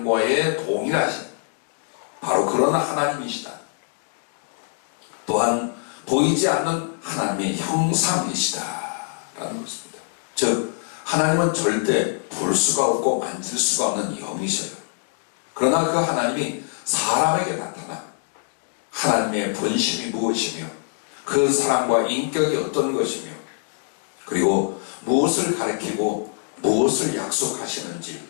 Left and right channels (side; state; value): right; silent; 60 dB below the other